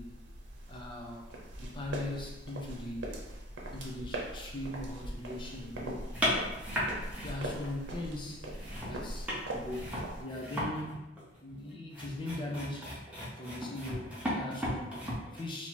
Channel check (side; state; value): both; normal; correlation 0.43